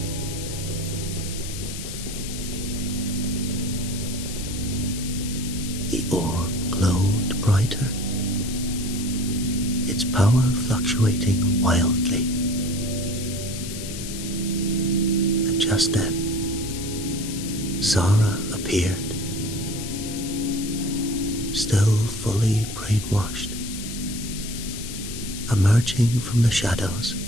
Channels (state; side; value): noise; left; hiss, 9 dB below the sound